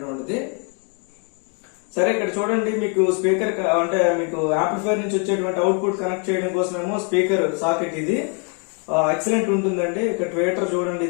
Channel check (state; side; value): quieter; right; 38.8 dB